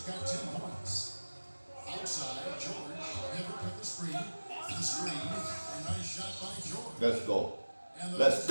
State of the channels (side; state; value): both; inverted; correlation -1.00